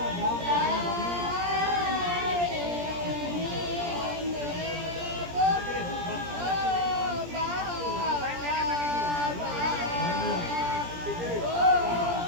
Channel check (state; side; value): late; left; 17 ms